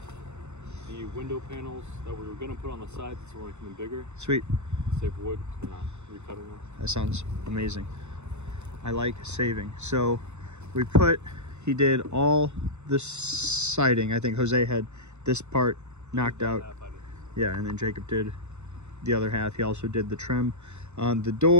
the window panels that we were going to put on the sides, so we're making them bigger. Sweet. Save wood. We're not recutting them. That sounds amazing. I like saving. So he did all the siding. I think Jose had this part knocked out. Yeah, and then Jacob did the other half. He also did the trim on the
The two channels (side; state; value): left; late; 0.82 ms